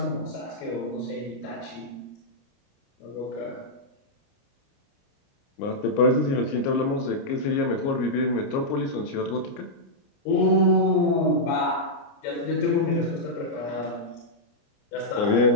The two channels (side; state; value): right; late; 29 ms